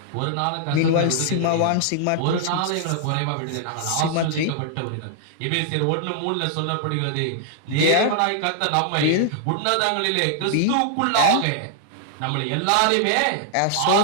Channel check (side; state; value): both; different; correlation -0.01